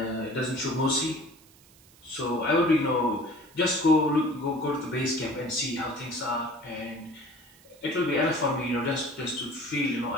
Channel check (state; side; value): noise; right; hiss, 26 dB below the sound